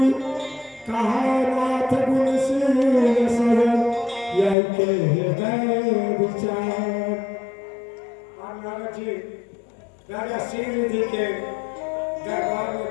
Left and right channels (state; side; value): drops out; right; at 4.5 s